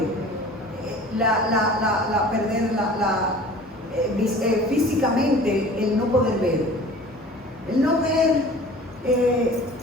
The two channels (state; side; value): normal; both; correlation 0.44